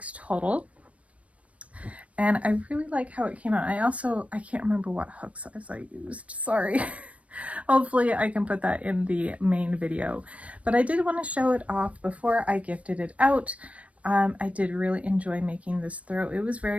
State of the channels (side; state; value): left; late; 0.065 ms